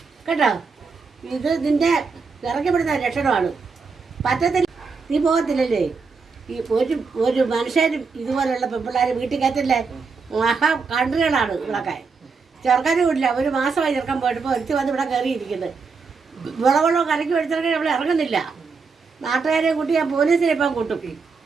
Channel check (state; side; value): quieter; left; 4.9 dB